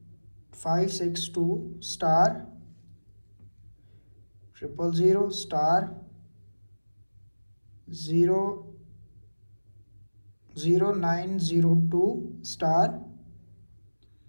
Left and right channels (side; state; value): both; inverted; correlation -1.00